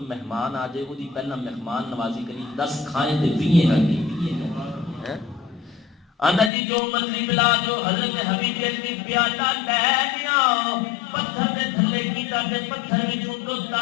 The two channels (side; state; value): right; drops out; at 6.5 s